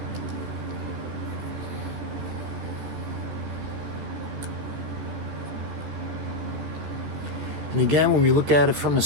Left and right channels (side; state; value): left; late; 14 ms